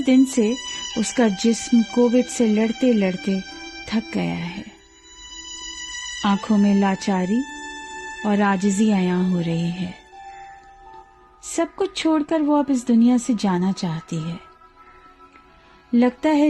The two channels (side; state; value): both; identical; correlation 1.00